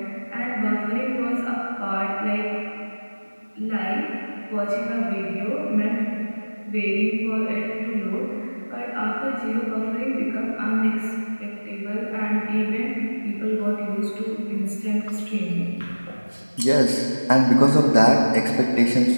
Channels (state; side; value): inverted; both; correlation -1.00